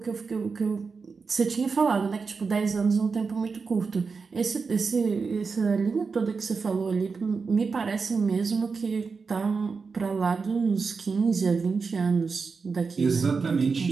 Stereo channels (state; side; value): quieter; left; 4.9 dB